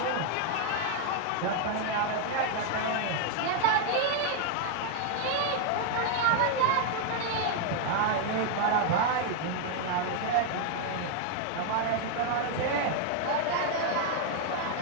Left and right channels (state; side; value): different; both; correlation 0.00